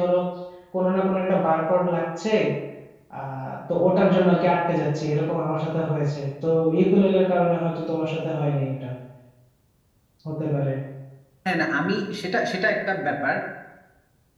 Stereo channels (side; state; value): both; identical; correlation 1.00